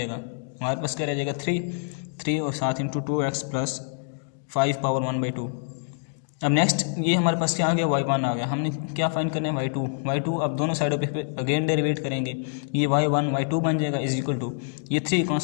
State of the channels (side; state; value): right; silent; digital silence